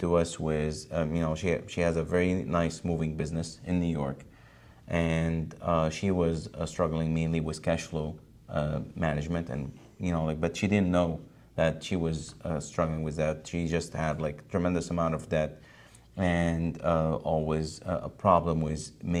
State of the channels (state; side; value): identical; both; correlation 1.00